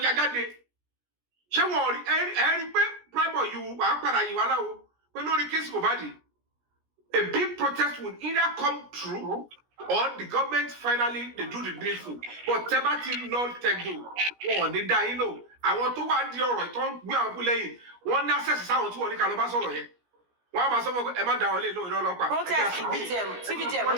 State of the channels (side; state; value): left; late; 17 ms